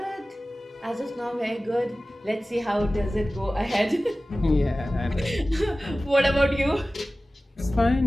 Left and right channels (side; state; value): both; normal; correlation 0.97